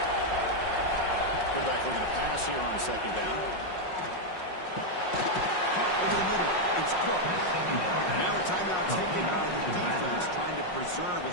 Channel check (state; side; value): late; right; 5.5 ms